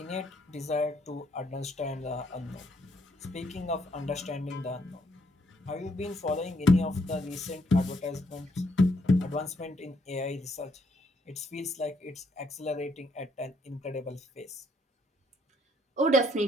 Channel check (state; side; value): normal; both; correlation 0.70